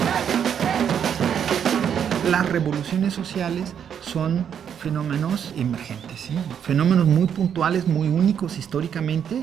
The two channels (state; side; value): quieter; left; 8.3 dB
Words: Las revoluciones sociales son fenómenos emergentes, ¿sí? Fenómenos muy puntuales, muy únicos históricamente,